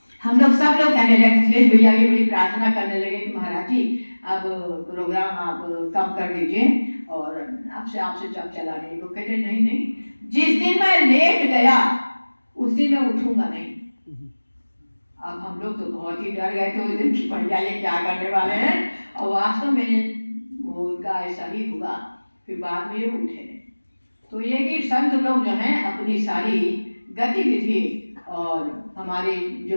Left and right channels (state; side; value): inverted; both; correlation -1.00